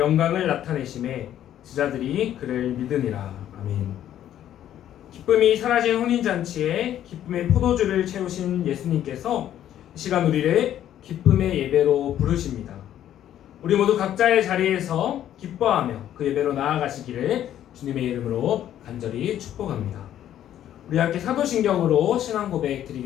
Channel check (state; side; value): quieter; right; 11.3 dB